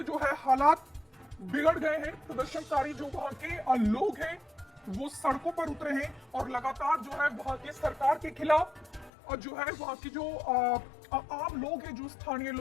जो है हालात बिगड़ गए हैं। प्रदर्शनकारी जो वहां के लोग हैं वो सड़कों पर उतरे हैं और लगातार जो है वहां की सरकार के खिलाफ और जो है वहां की जो आम लोग हैं, जो स्थानीय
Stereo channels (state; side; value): drops out; right; at 9.1 s